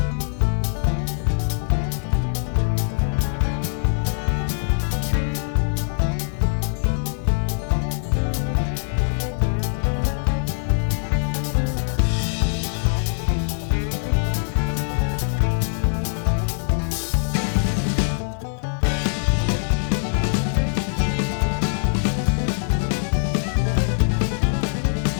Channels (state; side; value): silent; right; digital silence